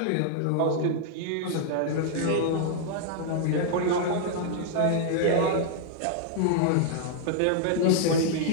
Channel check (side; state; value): both; different; correlation -0.01